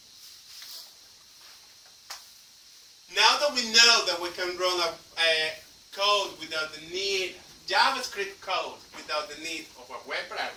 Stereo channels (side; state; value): both; identical; correlation 1.00